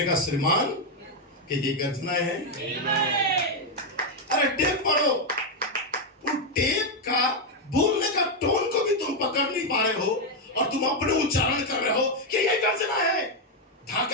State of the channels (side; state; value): both; normal; correlation 0.03